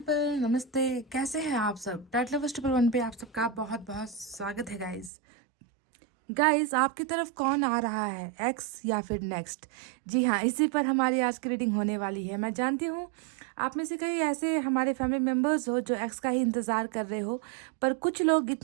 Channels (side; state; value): left; drops out; at 5.1 s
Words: नमस्ते। कैसे हैं आप सब? टाइट लवर्स ट्रिपल वन पे आप सबका बहुत बहुत स्वागत है गाइस। आपकी तरफ कौन आ रहा है, एक्स या फिर नेक्स्ट? जी हाँ, इसी पर हमारी आज की रीडिंग होने वाली है। मैं जानती हूँ आप में से कई ऐसे हमारे फैमिली मेम्बर्स हो जो एक्स का ही इंतज़ार कर रहे हो, पर कुछ लोग